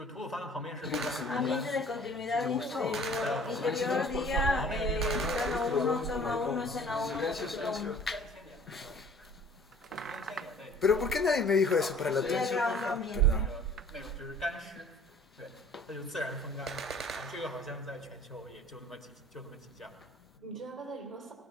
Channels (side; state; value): both; normal; correlation 0.50